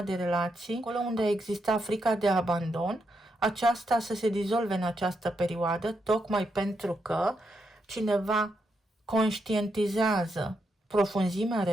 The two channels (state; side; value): normal; both; correlation 0.82